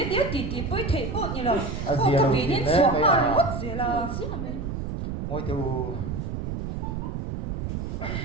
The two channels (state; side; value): noise; right; rumble, 4 dB below the sound